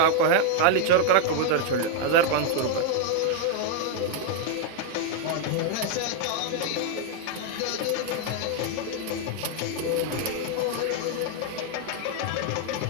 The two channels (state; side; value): different; both; correlation 0.00